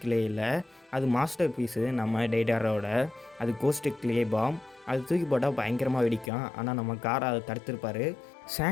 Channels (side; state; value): right; drops out; at 6.3 s